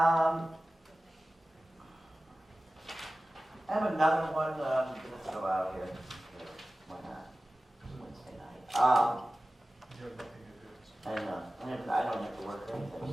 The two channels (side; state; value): both; normal; correlation 0.96